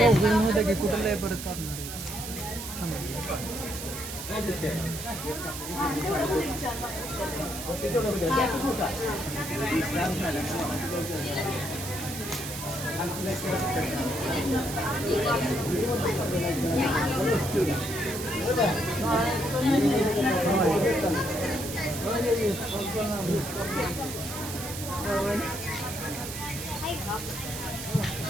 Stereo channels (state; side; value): noise; right; hiss, 8 dB below the sound